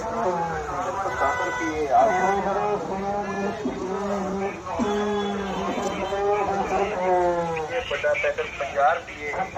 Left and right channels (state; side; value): identical; both; correlation 1.00